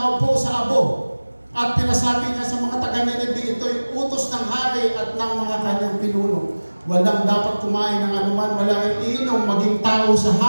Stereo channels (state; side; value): inverted; both; correlation -1.00